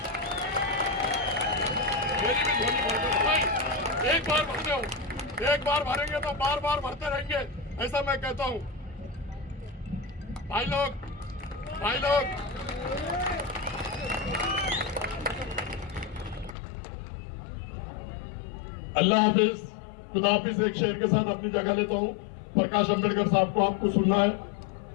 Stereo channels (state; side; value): drops out; right; at 16.6 s